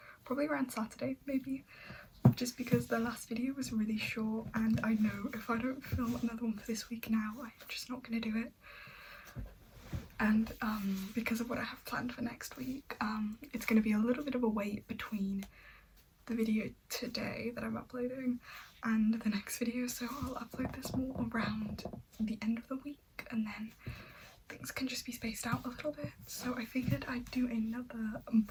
probably around Saturday maybe, just because the last video was really short and I know if I don't film another one for this week now, I'm just not gonna do it. And because of what I have planned for next week, it's gonna be a little bit of a wait between the video today that I'm uploading and the next video, so I'll upload this more around the end of the week and then things can just be spaced out a little bit. So I figured I'd do another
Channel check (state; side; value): identical; both; correlation 1.00